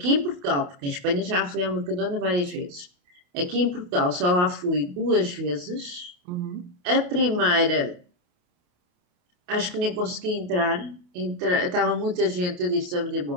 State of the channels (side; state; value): left; late; 28 ms